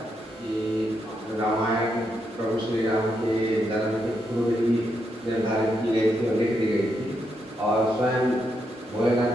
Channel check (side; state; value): both; normal; correlation 0.81